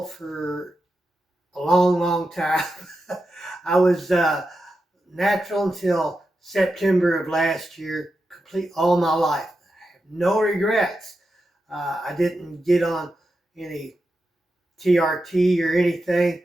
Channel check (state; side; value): normal; both; correlation 0.89